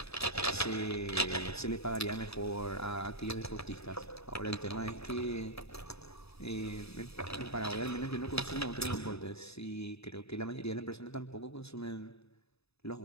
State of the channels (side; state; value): right; late; 0.79 ms